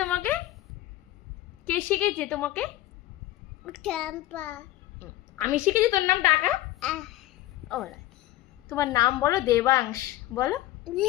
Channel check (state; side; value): quieter; right; 15.9 dB